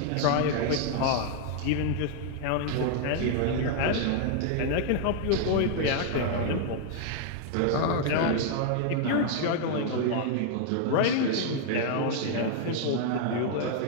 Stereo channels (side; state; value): both; different; correlation 0.00